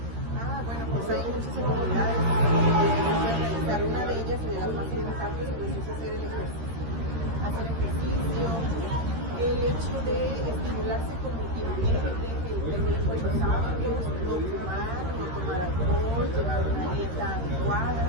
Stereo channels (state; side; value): late; left; 13 ms